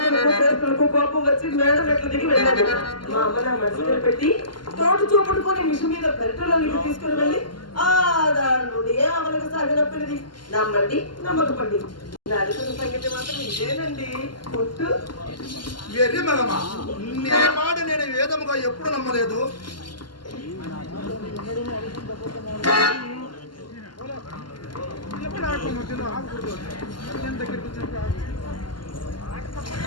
చేతులకు కోపం వచ్చి మేడం ఎట్లా దిగి వెళ్ళాడు. మా అమ్మ నా మనసులో పెట్టి తోట చూపడుకొని మిషన్ మీద పెరటలోకి తీసుకుని వెళ్ళి ఆదారుడు ఏ అవలకు సాగినప్పటిది నమ్మండి నమ్మకపండి. నా అడుగుతున్న సంగతి మాత్రం ఇదేనండి. పొట్టు మాట నేను వేదముగా ఎప్పుడు నమ్మలేదు.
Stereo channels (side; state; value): right; late; 0.71 ms